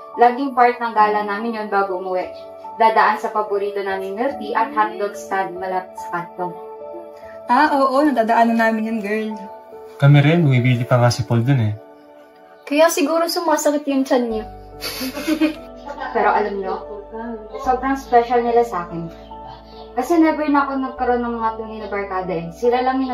Laging part ng gala namin yun bago umuwi. Dadaan sa paborito namin milk tea at hotdog stand malapit sa kanto. Oo, nadadaanan namin yun, girl. Kami rin, bumibili pa nga si Paul dun eh. Kaya siguro sumasakit yung tiyan niya. Pero alam nyo, sobrang special nila sa akin. Kasi never na ako nagkaroon ng mga tunay na barkada eh. Sila lang yung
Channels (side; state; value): both; identical; correlation 1.00